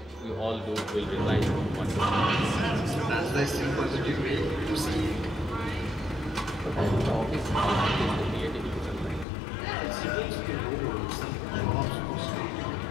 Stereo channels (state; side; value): drops out; right; at 9.2 s